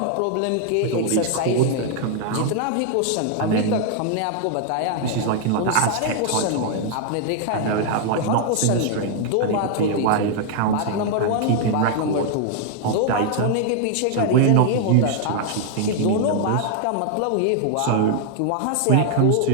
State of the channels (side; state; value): both; different; correlation 0.00